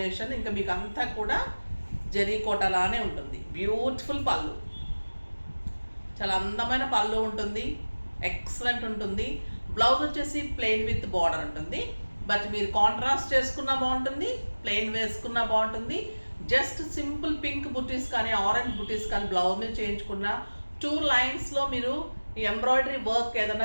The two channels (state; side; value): inverted; both; correlation -1.00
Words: ఇంకా మీకు అంతా కూడా జరీ కోటలానే ఉంటుంది. బ్యూటిఫుల్ పళ్ళు, చాలా అందమైన పళ్ళు ఉంటుంది, ఎక్సలెంట్ ఉంటుంది. బ్లౌజ్ వచ్చేసి ప్లెయిన్ విత్ బార్డర్ ఉంటుంది, బట్ మీరు కాంట్రాస్ట్ చేసుకున్నా బాగుంటుంది, ప్లెయిన్ వేసుకున్నా బాగుంటుంది. జస్ట్ సింపుల్ పింక్ బుటీస్ కానీ ఆరెంజ్ బుటీస్ కానీ బ్లౌజ్ మీద చేయించుకున్న 2 లైన్స్లో మీరు ఎంబ్రాయిడరీ వర్క్